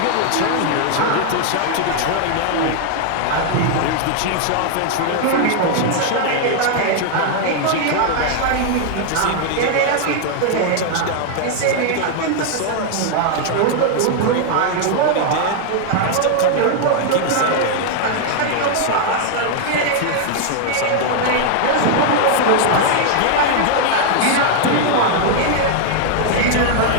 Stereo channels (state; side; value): different; both; correlation 0.00